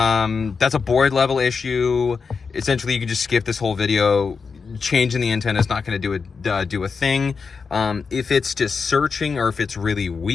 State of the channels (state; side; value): quieter; right; 5.3 dB